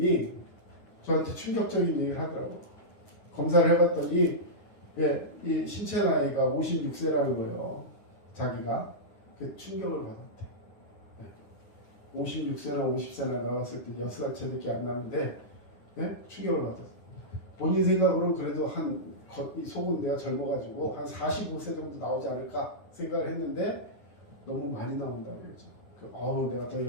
저한테 충격적인 얘기를 하더라고요. 검사를 해봤더니 이 신체 나이가 56세라는 거예요. 자기가. 그 충격을 받았대. 56세나 50세나 나왔을 때 6살 차이밖에 안 나는데 충격을 받았어요. 본인 생각으로는 그래도 이 속은 내가 젊어가지고 한 45세 정도 나오지 않을까 생각을 했는데 너무 많이 나온다고 그러죠. 내가 더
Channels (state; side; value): late; right; 9.7 ms